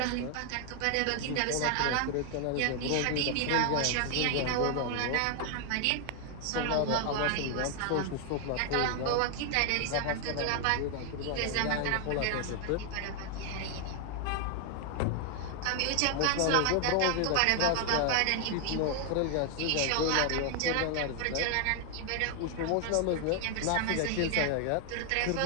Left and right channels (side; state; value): both; different; correlation 0.00